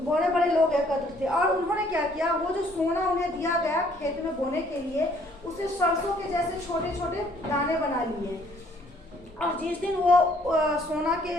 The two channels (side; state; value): both; normal; correlation 0.63